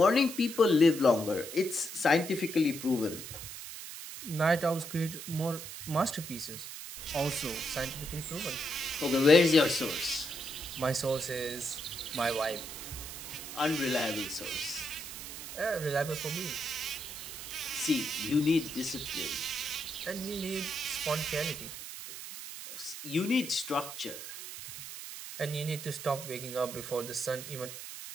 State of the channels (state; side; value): noise; right; hiss, 10 dB below the sound